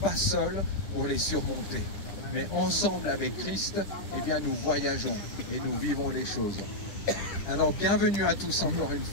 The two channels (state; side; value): late; right; 10 ms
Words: pas seuls pour les surmonter. Mais ensemble avec Christ, eh bien, nous voyageons et nous vivons les choses. Alors, bienvenue à tous encore une